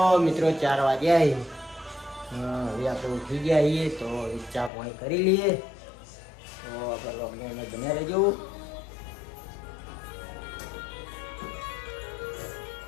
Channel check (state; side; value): drops out; right; at 4.7 s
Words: મિત્રો 4 વાગ્યા હવે આપણે ઉઠી ગયા છીએ તો ચા પાણી કરી લઈએ. તો આપણે લોકડાઉન બન્યા રહેજો.